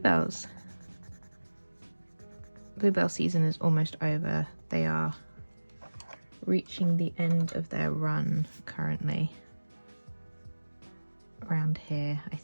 Bluebell season is almost over. They are reaching the end of their run currently. Around here, I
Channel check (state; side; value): inverted; both; correlation -1.00